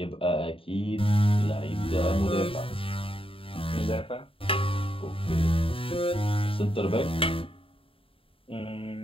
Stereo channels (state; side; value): late; right; 0.26 ms